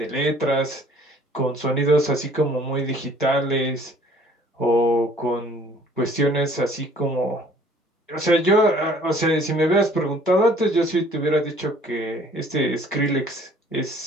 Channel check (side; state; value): both; normal; correlation 0.55